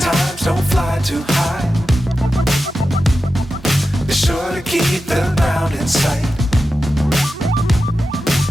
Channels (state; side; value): normal; both; correlation 0.91